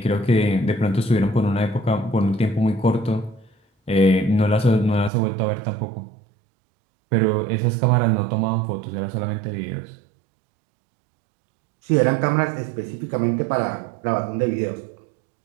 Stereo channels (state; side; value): drops out; left; at 5.1 s